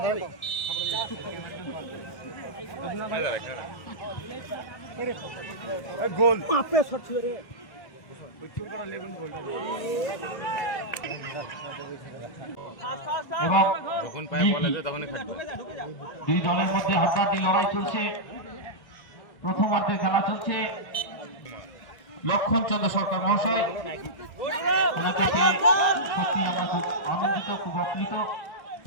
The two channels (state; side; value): late; right; 1.6 ms